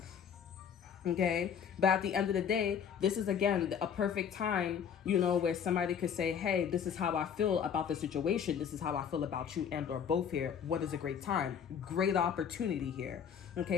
Okay, but at the end of the day, this is again a perfect time, you know, where somebody could say, hey, this is how I feel about the situation, this is how I feel about you and or both here. What is a great time? Great opportunity here.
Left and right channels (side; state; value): right; quieter; 7.8 dB